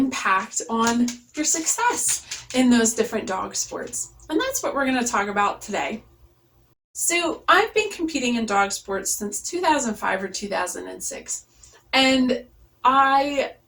on your success in those different dog sports. And that's what we're going to talk about today. So I've been competing in dog sports since 2005 or 2006. And I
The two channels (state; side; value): identical; both; correlation 1.00